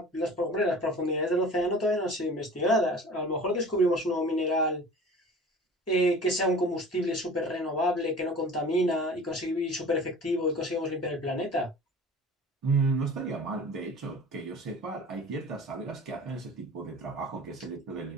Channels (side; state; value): both; normal; correlation 0.41